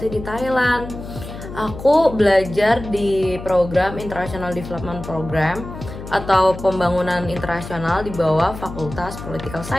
di Thailand. Aku belajar di program International Development Program atau pembangunan internasional di bawah Fakultas Political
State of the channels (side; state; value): left; noise; hum, 11 dB below the sound